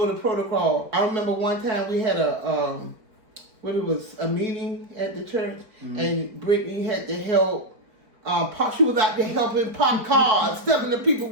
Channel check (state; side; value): late; left; 4.4 ms